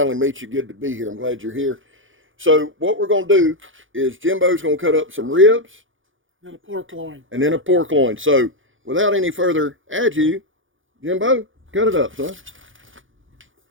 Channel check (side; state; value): left; late; 0.57 ms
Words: meet you. Good to be here. I'm glad you're here. So what we're going to do is Jimbo's going to cut up some ribs. And a pork loin. And then a pork loin. So without any further ado, Jimbo, cut it up, son.